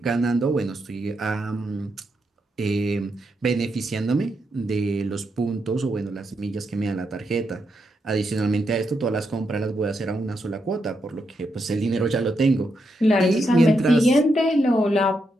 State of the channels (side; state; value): both; normal; correlation 0.82